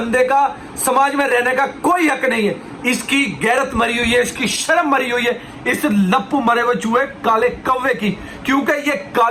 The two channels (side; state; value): both; identical; correlation 1.00